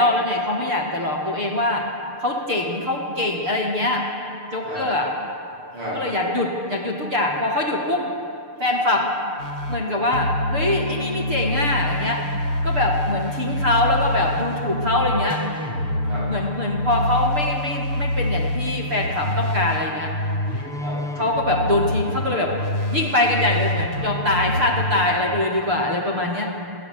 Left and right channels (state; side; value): late; left; 6.7 ms